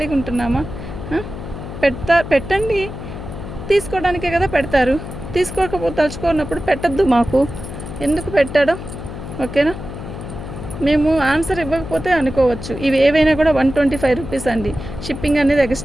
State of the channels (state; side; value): noise; left; hum, 10 dB below the sound